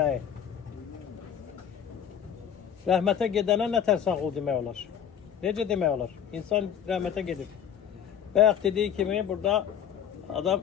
Rəhmətə gedənə nətər sağ ol demək olar? Necə demək olar? İnsan rəhmətə gedir. Bayaq dediği kimi burada adam,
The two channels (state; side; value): quieter; right; 8.9 dB